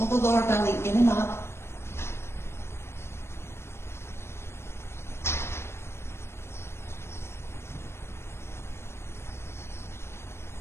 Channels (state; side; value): late; right; 0.12 ms